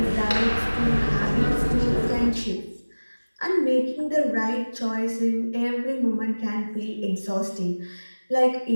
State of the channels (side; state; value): both; inverted; correlation -1.00